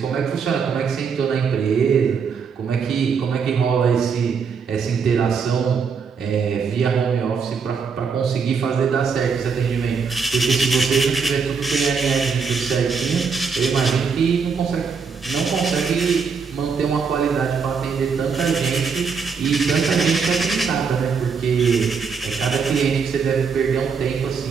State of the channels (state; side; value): quieter; left; 5.8 dB